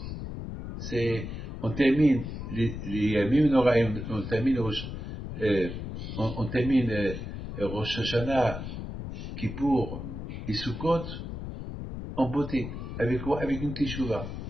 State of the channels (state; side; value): noise; left; rumble, 7 dB below the sound